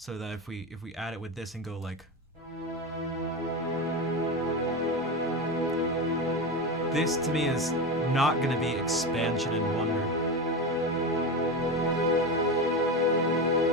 that if we add it with this and go like, this to me is not going to be expansion and wonder.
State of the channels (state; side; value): normal; both; correlation 0.20